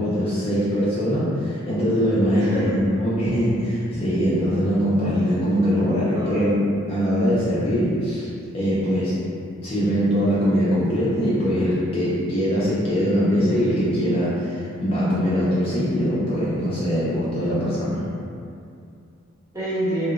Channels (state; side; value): normal; both; correlation 0.68